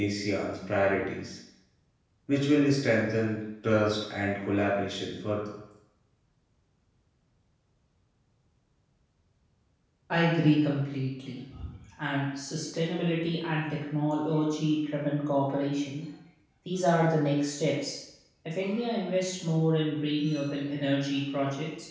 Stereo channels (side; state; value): both; identical; correlation 1.00